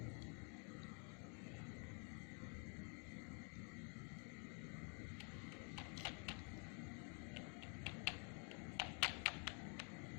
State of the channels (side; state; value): right; quieter; 39.2 dB